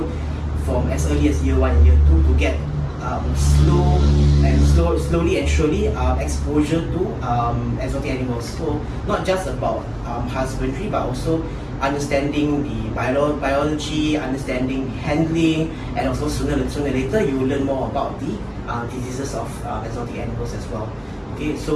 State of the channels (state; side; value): identical; both; correlation 1.00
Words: from as early as year 1 and year 2 to get slowly and surely exposure to exotic animals. So not just about husbandry, but also understanding the biology, understanding handling, and also sooner or later you will learn more about the diseases of exotic animals as well. Okay,